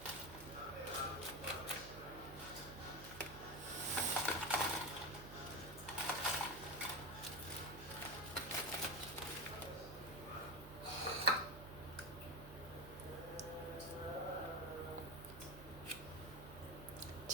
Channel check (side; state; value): right; noise; hum, 14 dB below the sound